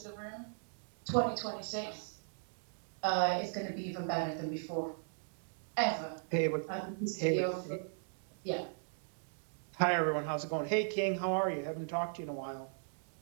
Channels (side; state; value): left; silent; digital silence